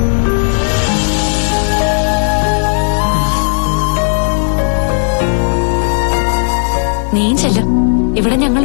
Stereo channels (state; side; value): silent; right; digital silence